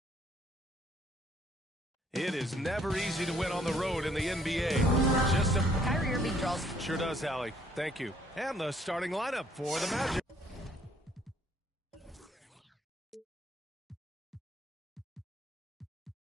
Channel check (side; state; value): both; normal; correlation 0.64